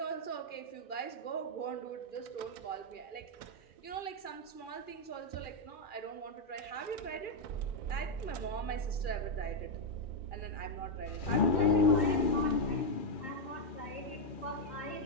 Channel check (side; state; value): right; late; 2.4 ms